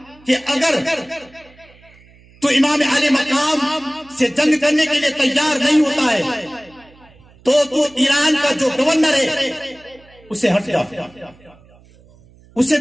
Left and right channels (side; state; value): right; noise; hum, 27 dB below the sound